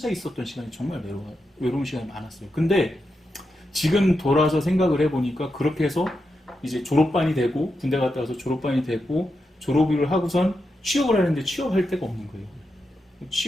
있었던 시간이 정말 외로운 시간이 많았어요. 근데 지금 돌아서 생각을 해보니까 그렇게 해서 이제 졸업반이 되고 군대 갔다 와서 졸업반이 되고 졸업을 하고선 취업을 하는데 취업할 데가 없는 거예요.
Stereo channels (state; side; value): normal; both; correlation 0.87